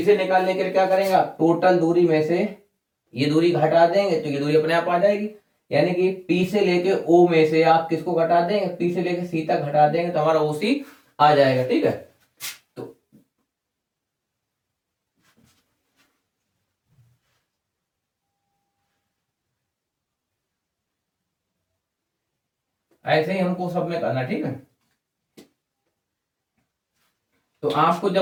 निकालने के लिए क्या करेंगे, टोटल दूरी में से ये दूरी घटा देंगे तो ये दूरी अपने आप आ जाएगी। यानी कि P से लेके O में से आप किसको घटा देंगे, P से लेके C तक घटा देंगे तो हमारा OC आ जाएगा, ठीक है। तो ऐसे ही हमको सब में करना, ठीक है। तो आपको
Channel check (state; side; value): identical; both; correlation 1.00